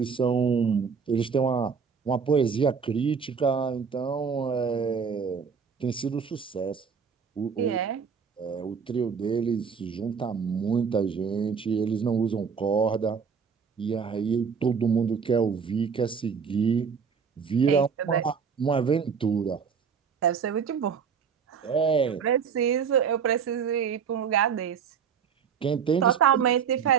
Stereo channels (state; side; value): quieter; left; 6.4 dB